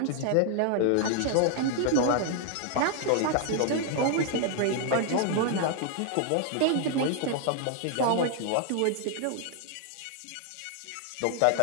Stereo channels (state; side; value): different; both; correlation 0.00